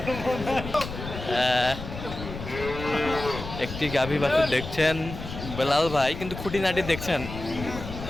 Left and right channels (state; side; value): noise; left; rumble, 9 dB below the sound